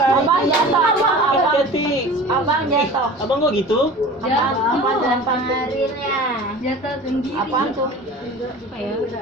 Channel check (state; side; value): normal; both; correlation 0.39